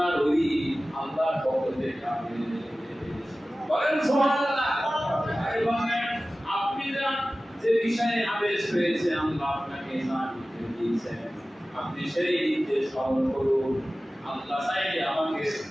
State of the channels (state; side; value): normal; both; correlation 0.96